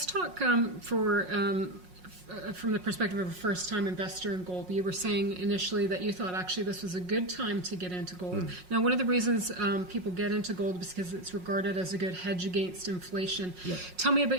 talk from the perspective of a first-time investor in gold. You were saying initially that you thought actually this was a good time to get into gold. Now, one of the reasons people get into gold is because it's regarded as a good hedge against inflation. Yeah. Tell me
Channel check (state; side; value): late; left; 5.5 ms